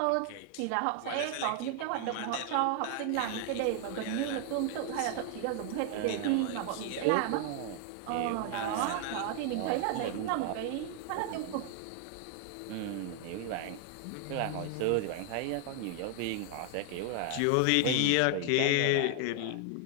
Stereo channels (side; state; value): both; different; correlation 0.00